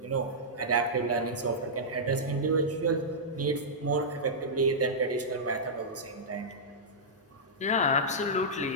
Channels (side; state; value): both; normal; correlation -0.12